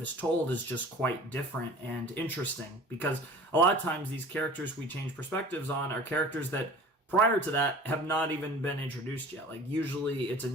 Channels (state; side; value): normal; both; correlation 0.43